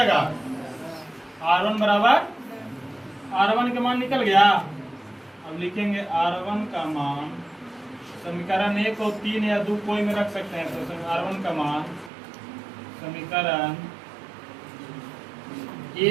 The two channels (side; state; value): left; drops out; at 12.1 s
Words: R1 बराबर, R1 के मान निकल गया। अब लिखेंगे R1 का मान, समीकरण 1 और 3 या 2 कोई में रख सकते हैं, तो R1 का मान समीकरण